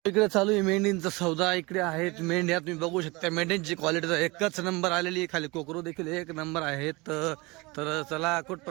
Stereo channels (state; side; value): quieter; left; 24.7 dB